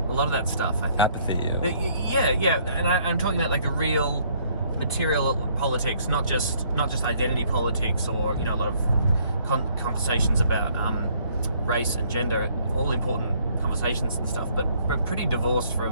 a lot of that stuff, I think. Apathy. Yeah. And I'm talking about like the real material politics, not just identity politics, or a lot of conversations about race and gender, all important conversations and stuff, but pretty divorced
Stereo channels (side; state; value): both; inverted; correlation -0.64